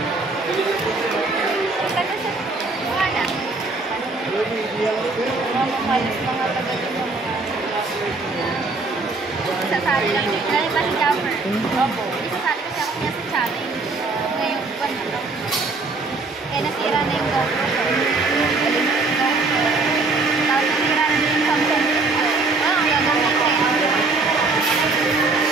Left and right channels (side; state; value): left; quieter; 3.6 dB